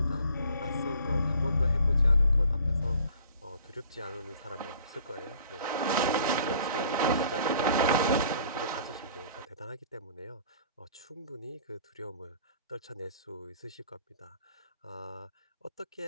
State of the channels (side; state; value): both; inverted; correlation -0.52